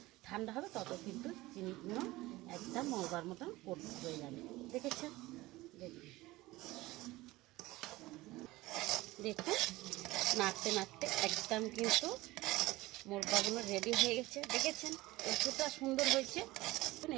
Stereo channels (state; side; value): quieter; left; 19.2 dB